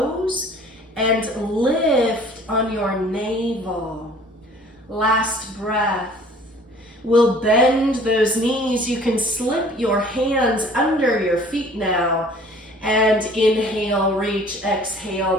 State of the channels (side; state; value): both; normal; correlation 0.51